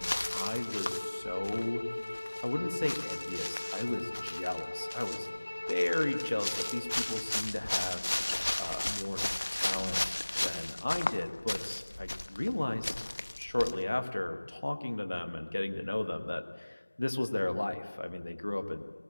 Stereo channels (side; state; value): both; inverted; correlation -1.00